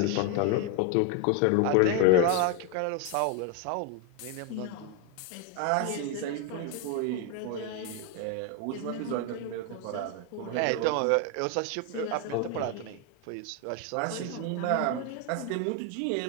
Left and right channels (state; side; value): different; both; correlation 0.01